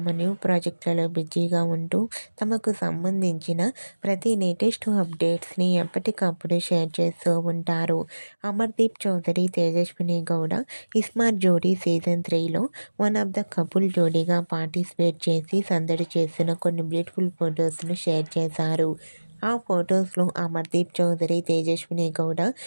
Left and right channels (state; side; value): inverted; both; correlation -1.00